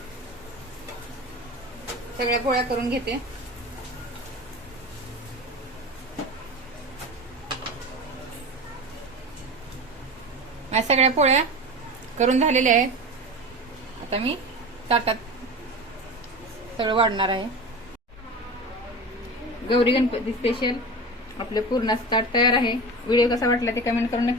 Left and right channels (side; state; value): both; normal; correlation 0.30